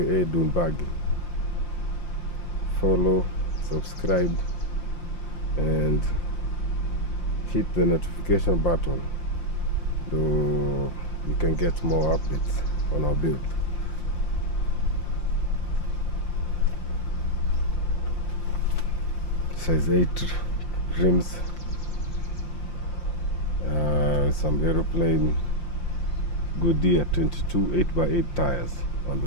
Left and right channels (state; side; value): late; right; 5.7 ms